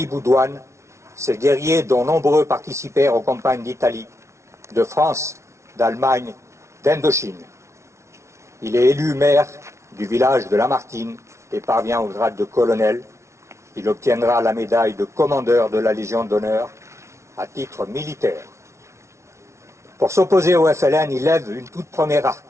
Boudouane, ces guerriers dont nombreux participèrent aux campagnes d'Italie, de France, d'Allemagne, d'Indochine. Il est élu maire du village de Lamartine et parvient au grade de colonel. Il obtiendra la médaille de commandeur de la Légion d'honneur à titre militaire. Pour s'opposer au FLN, il lève une toute première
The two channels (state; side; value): late; left; 0.13 ms